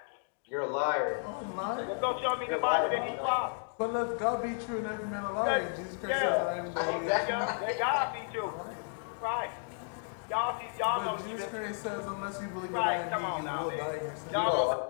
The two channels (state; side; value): silent; right; 55 dB below the other